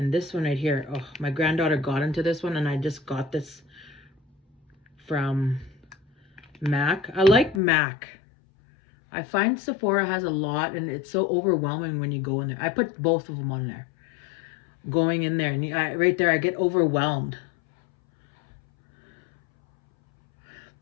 this one right here, oh, my granddaughter got into this one, and I just got this from MAC. I like MAC. I find Sephora has a lot, and it's so overwhelming when you go in there. I put both of them on there. Going in there, and right there, I get overwhelmed.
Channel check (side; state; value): right; drops out; at 7.6 s